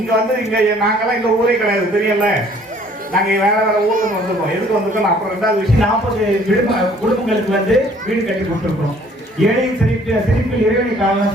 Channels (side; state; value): both; normal; correlation 0.58